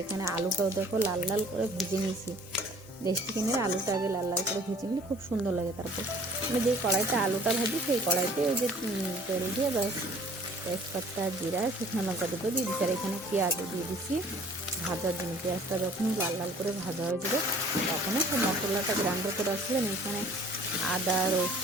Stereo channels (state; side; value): normal; both; correlation 0.52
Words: এখানে আলুটাও দেখো লাল লাল করে ভেজে নিয়েছি। দেশি চিকেনের আলুটা আগে লাল লাল করে ভেজে নিলে খুব সুন্দর লাগে। তারপর আমি যেই কড়াইতে আলুটা ভাজি সেই কড়াইতে ওই যে তেল দিয়ে বাস তেজপাতা, জিরা, শুকনো লঙ্কা দুটো দিয়ে দিচ্ছি। আর এখানে পেঁয়াজও দিয়ে দিচ্ছি ভাজার জন্য। পেঁয়াজটা যখন লাল লাল করে ভাজা হয়ে যাবে তখন সব মশলাটা গ্রাইন্ডার করে আসছিলাম। এখানে আদা,